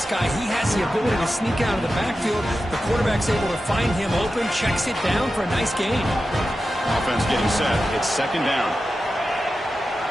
guy. He has the ability to sneak out of the backfield. The quarterback's able to find him open, checks it down for a nice gain. Offense getting set. It's second down.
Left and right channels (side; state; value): both; normal; correlation 0.92